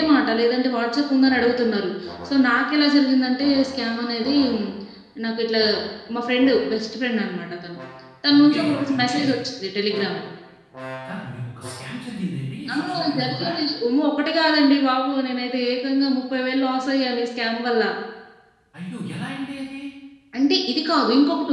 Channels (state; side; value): identical; both; correlation 1.00